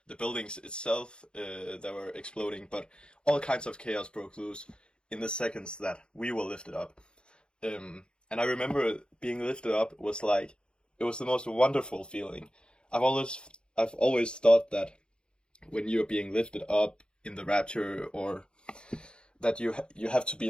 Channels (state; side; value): late; right; 0.052 ms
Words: the buildings itself that were exploding, but all kinds of chaos broke loose in the seconds that we were lifted up. And I remember being lifted up was like, it was the most wonderful feeling. I've always thought that when you're being lifted up in the rapture, or that you have to be